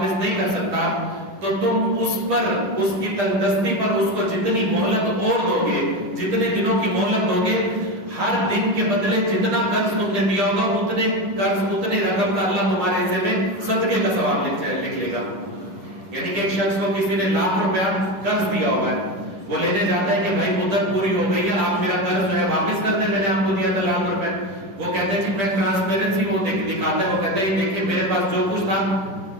نہیں کر سکتا، تو تم اس پر، اس کی تنگدستی پر اس کو جتنی مہلت اور دو گے، جتنے دنوں کی مہلت دو گے، ہر دن کے بدلے جتنا قرض تم نے دیا ہوگا اتنے قرض، اتنے رقم کا اللہ تمہارے حصے میں صدقے کا ثواب لکھ لے گا. یعنی کہ ایک شخص کو کسی نے 1 لاکھ روپیہ قرض دیا ہوگا، وہ لینے جاتا ہے کہ بھائی مدت پوری ہو گئی ہے، آپ میرا قرض جو ہے واپس کر دیں، میں نے آپ کو دیا تھا 1 لاکھ روپے. وہ کہتے ہیں کہ میں ٹرانسپیرنسی وہ دکھاتے ہیں، وہ کہتے ہیں دیکھیں میرے پاس جو کچھ تھا،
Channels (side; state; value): left; late; 10 ms